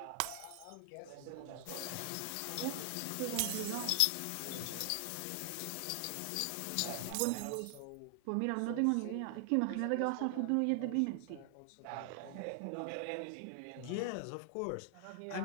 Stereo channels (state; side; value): different; both; correlation 0.00